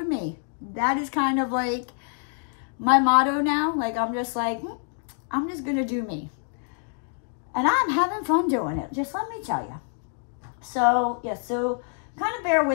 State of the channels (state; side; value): silent; right; 57 dB below the other